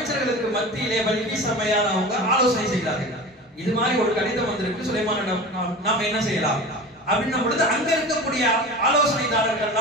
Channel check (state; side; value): normal; both; correlation 0.33